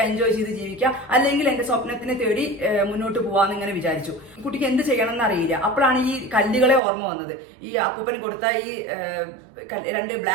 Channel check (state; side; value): drops out; left; at 6.8 s